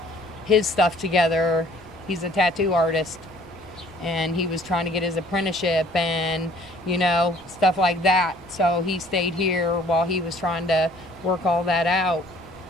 his stuff together. He's a tattoo artist, and he was trying to get his apprenticeship and, stuff like that. So he stayed here while he was trying to work all that out.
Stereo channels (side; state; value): both; normal; correlation 0.56